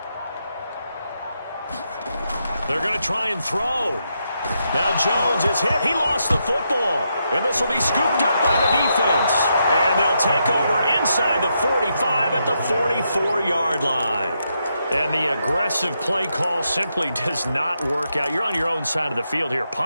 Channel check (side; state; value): both; inverted; correlation -0.82